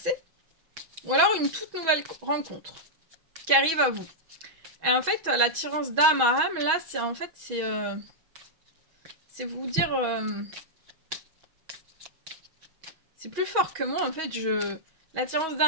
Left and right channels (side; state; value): left; late; 6.2 ms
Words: ou alors une toute nouvelle rencontre qui arrive à vous. Et en fait, l'attirance d'âme à âme, là, c'est en fait, c'est vous dire... c'est plus fort que moi, en fait, L'attirance